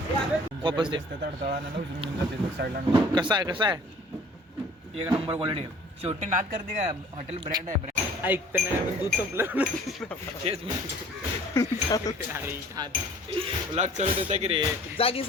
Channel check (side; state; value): both; normal; correlation 0.51